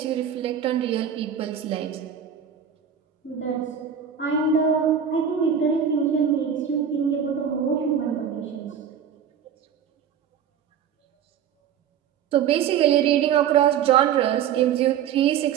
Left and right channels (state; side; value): quieter; left; 8.3 dB